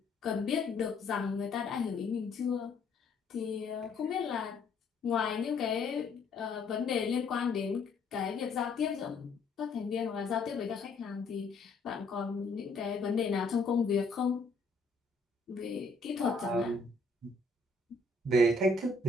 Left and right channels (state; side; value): quieter; right; 3.5 dB